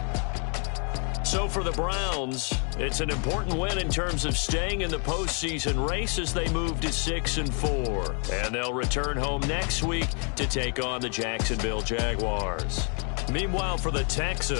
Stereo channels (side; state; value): right; quieter; 39.5 dB